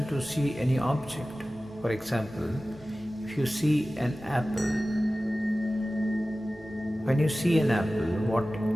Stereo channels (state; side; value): normal; both; correlation 0.96